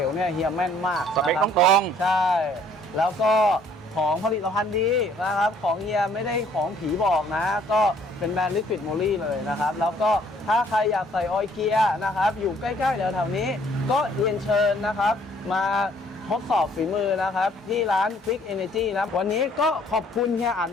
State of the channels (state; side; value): normal; both; correlation 0.61